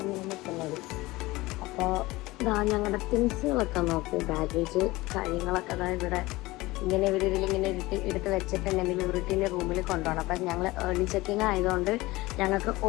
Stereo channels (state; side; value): quieter; right; 20.0 dB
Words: ഞാൻ നിൽക്കുന്നത്. അപ്പോൾ ഇതാ ഞങ്ങളുടെ തിങ്സുകളൊക്കെ നോക്കൂ, ബാഗേജ് കാര്യങ്ങളൊക്കെ അതാ ഇവിടെ ഇങ്ങനെ ഇവരിതിലിങ്ങനെ എടുത്ത് വെച്ചിട്ടുണ്ടെങ്കിൽ ഇവരുടെ റൂമിൽ കൊണ്ടുപോകണം. അപ്പം ഞങ്ങൾ ഏർലി ചെക്കിങ് ആയതുകൊണ്ട് ഞങ്ങൾക്ക്